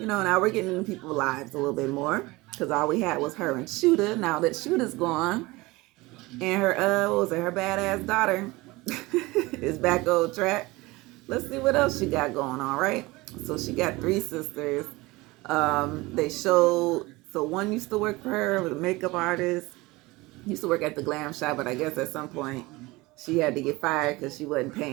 we're getting into people's lives a little bit more because all we had was her and Shooter. Now that Shooter's gone and her, what was it, her badass daughter is back on track. Let's see what else she got going on, right? So she got three sisters. They showed, so one used to work for her, was a makeup artist, used to work at the glam shop, but I guess at some point she had to get fired because she wasn't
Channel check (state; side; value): quieter; left; 21.8 dB